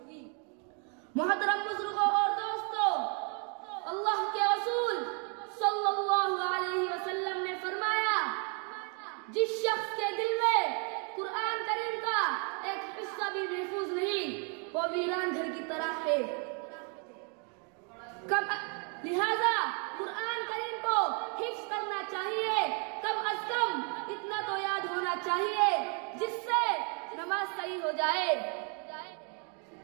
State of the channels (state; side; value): quieter; left; 38.1 dB